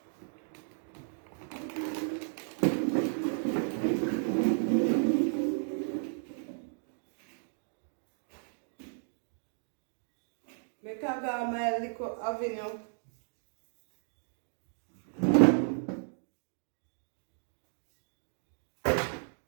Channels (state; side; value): silent; left; digital silence